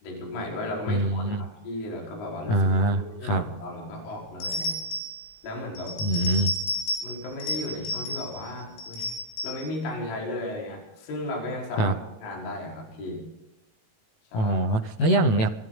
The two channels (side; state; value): right; late; 18 ms